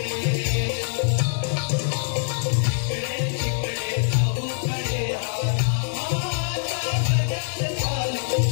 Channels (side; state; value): right; silent; digital silence